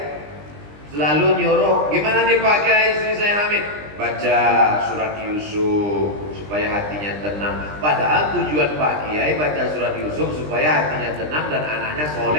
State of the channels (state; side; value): late; left; 20 ms